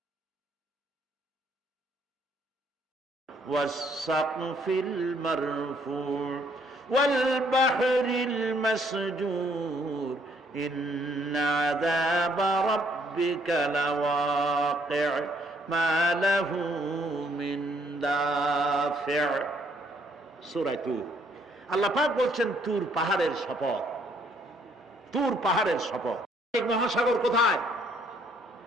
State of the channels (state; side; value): normal; both; correlation 0.67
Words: والسقف المرفوع والبحر المسجور إن عذاب ربك لواقع ما له من دافع। সূরা তুর। আল্লাহ পাক বলছেন তুর পাহাড়ের শপথ, তুর পাহাড়ের শপথ। মহাসাগর কোথায়